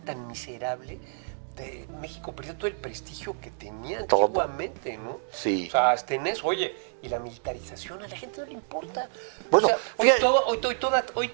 miserable. México perdió todo el prestigio que tenía antiguamente, ¿no? Sí. O sea, hasta en eso, y la militarización a la gente no le importa. Bueno, o sea, hoy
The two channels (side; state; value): left; silent; digital silence